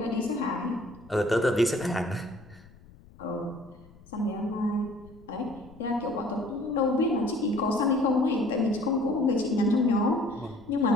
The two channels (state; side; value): noise; left; rumble, 23 dB below the sound